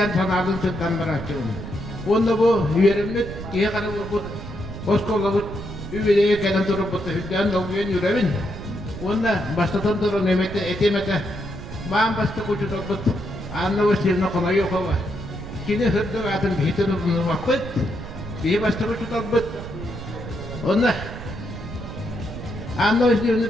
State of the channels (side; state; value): right; noise; rumble, 10 dB below the sound